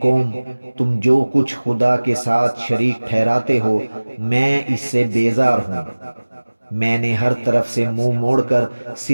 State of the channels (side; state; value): both; inverted; correlation -1.00